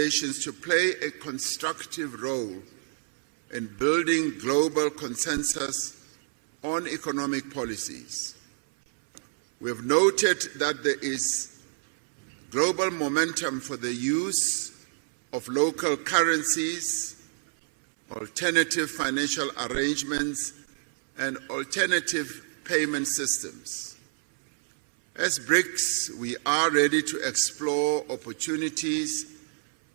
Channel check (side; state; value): left; silent; 59 dB below the other